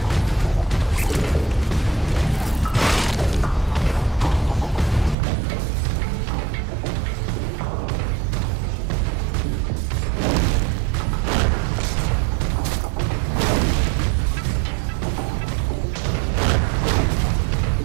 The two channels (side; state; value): left; drops out; at 5.2 s